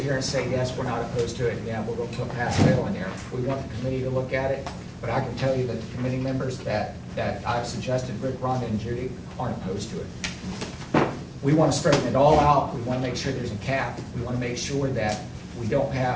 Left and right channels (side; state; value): both; identical; correlation 1.00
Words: here and say, yes, we're not opposed to it, yeah, we're going to put pass-fail in there. We want the committee to look at it, but I can tell you that the committee members that I've suggested, Rick, Rhonda, and Judy, aren't opposed to it. We want to straighten it all out. We want to make sure there's a cap. We want to make sure that we don't